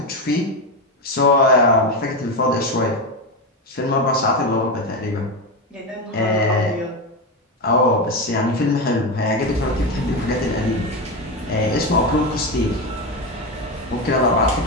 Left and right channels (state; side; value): normal; both; correlation 0.14